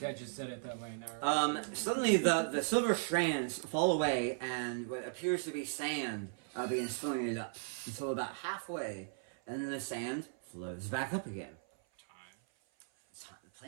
I just said it that way now. Suddenly the silver strands fall away, and what appears to be sand begins filling it up until about halfway, and then the sand flows back up again. The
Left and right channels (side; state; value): left; silent; 53 dB below the other